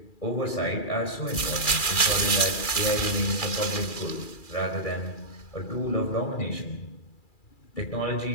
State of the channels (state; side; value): late; right; 2.3 ms